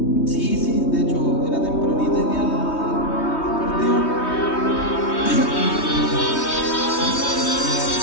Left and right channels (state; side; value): late; right; 3.2 ms